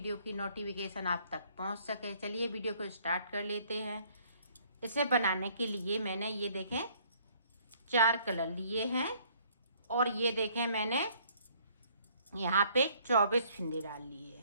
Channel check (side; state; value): both; inverted; correlation -0.61